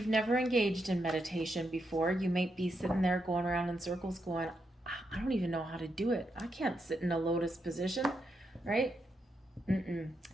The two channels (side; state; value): both; normal; correlation 0.82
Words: never engaged in meditation before, you might be sitting there going around in circles going, I don't even know how to do it. I can't sit in a lotus position, right?